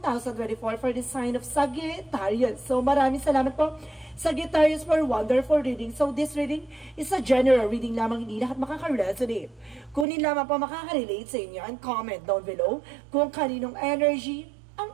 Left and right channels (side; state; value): left; drops out; at 10.1 s